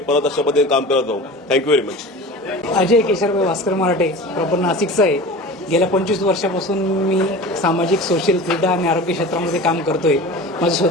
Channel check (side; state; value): both; normal; correlation 0.35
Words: परत अशा पद्धतीने काम करत जाऊ. Thank you very much. Ajay Kesharbhai Bhaskar Marathe, proper नाशिकचा आहे. गेल्या 25 वर्षापासून मी सामाजिक, सोशल, क्रीडा आणि आरोग्य क्षेत्रामध्ये काम करतोय. माझं